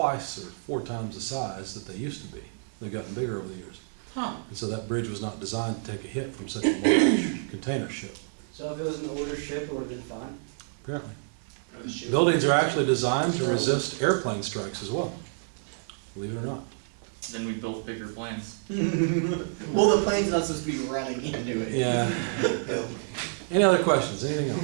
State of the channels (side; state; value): left; silent; digital silence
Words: or 4 times the size that they used to be. They've gotten bigger over the years. Huh. And so that bridge was not designed to take a hit from such a large container ship, So if it was an older ship, it would have been fine. apparently. Buildings are actually designed to resist airplane strikes as well, believe it or not. Then we built bigger planes. Well, the plane's not supposed to be running into it. Yeah. Any other questions? Anything